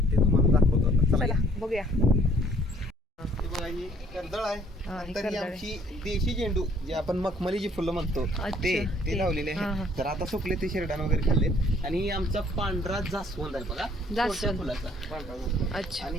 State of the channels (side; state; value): both; normal; correlation 0.60